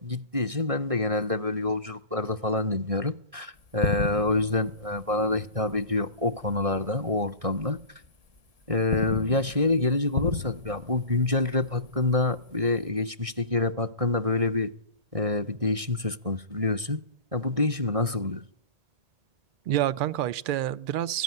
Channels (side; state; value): left; late; 1.6 ms